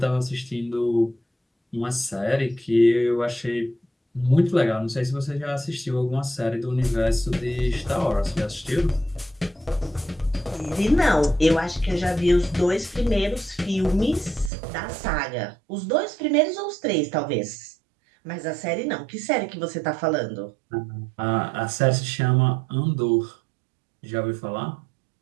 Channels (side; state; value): left; drops out; at 14.5 s